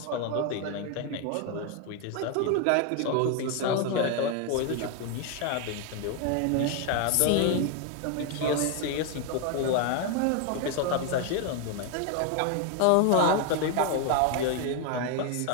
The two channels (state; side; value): different; both; correlation 0.01